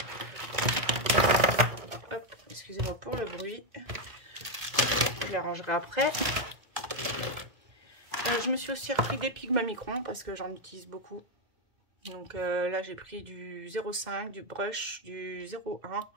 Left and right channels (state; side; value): late; left; 2.0 ms